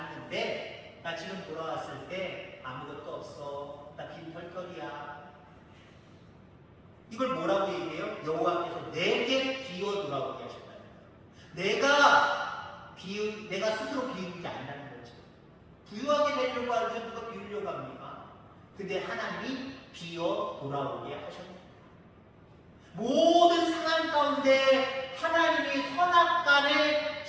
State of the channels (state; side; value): identical; both; correlation 1.00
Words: 나 지금 돌아왔을 때 아무것도 없어. 나 빈털털이야. 이걸 뭐라고 얘기해요? 여호와께서 내게 기어 돌아오게 하셨다는 거예요. 내가 스스로 비우는 게 아니라는 거죠. 부유하게 되려고 하는데 누가 비우려고 합니까? 근데 하나님이 비어 돌아오게 하셨습니다. 모든 상황 가운데 하나님이 선악간에